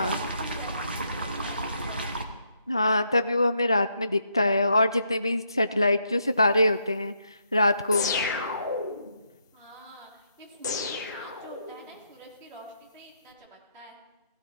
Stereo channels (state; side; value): inverted; both; correlation -0.77